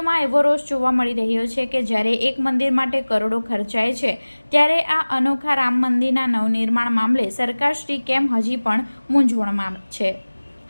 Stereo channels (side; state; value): both; inverted; correlation -1.00